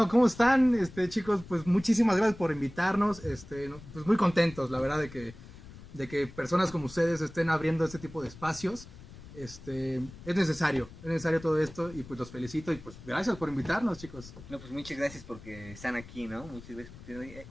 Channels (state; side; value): noise; left; rumble, 17 dB below the sound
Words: ¿cómo están? Chicos, pues muchísimas gracias por invitarnos. Pues muy contentos, la verdad, de que personas como ustedes estén abriendo este tipo de espacios. Es necesario todo esto y pues los felicito y pues gracias por invitarnos, chicos. No, pues muchas gracias porque están aquí, ¿no? Muchas